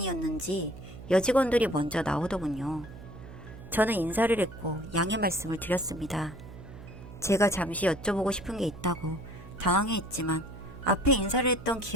여직원들이 먼저 나오더군요. 저는 인사를 했고 양해 말씀을 드렸습니다. 제가 잠시 여쭤보고 싶은 게 있다고 당황해했지만 앞에 인사를 했던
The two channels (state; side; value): noise; right; hum, 15 dB below the sound